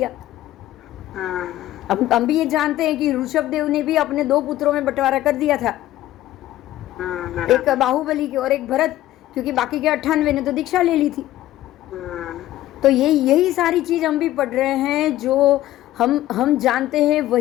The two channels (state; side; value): quieter; right; 14.6 dB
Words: अब हम भी ये जानते हैं कि ऋषभदेव ने भी अपने 2 पुत्रों में बंटवारा कर दिया था, एक बाहुबली के और एक भरत, क्योंकि बाकी के 98 ने तो दीक्षा ले ली थी। तो यही सारी चीज हम भी पढ़ रहे हैं, जो हम जानते हैं